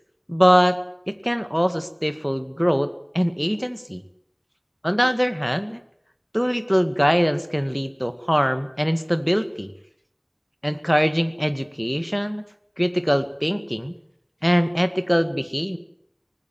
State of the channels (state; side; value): identical; both; correlation 1.00